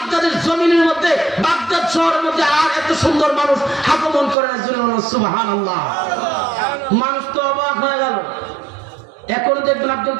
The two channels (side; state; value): left; drops out; at 4.4 s